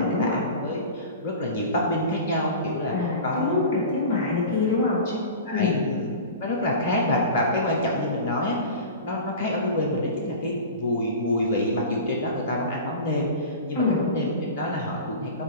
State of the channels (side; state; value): both; inverted; correlation -0.33